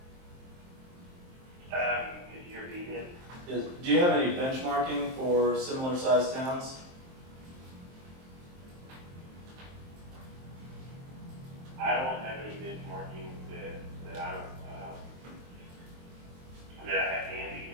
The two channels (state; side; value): late; left; 23 ms